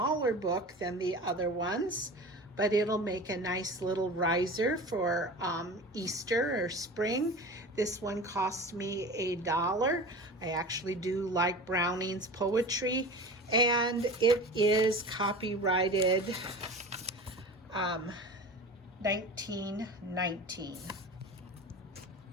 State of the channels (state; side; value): normal; both; correlation 0.34